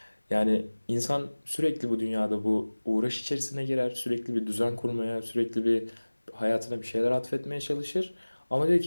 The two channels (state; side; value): inverted; both; correlation -1.00